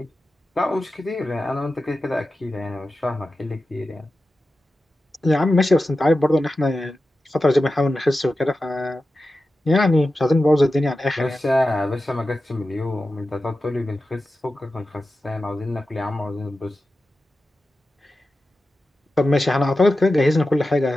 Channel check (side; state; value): both; normal; correlation 0.93